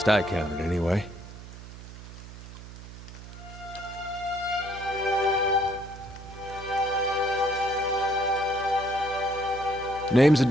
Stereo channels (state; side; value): noise; right; hum, 14 dB below the sound